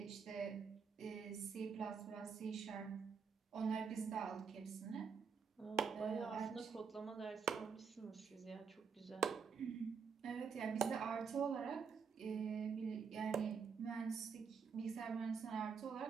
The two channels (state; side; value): quieter; left; 6.0 dB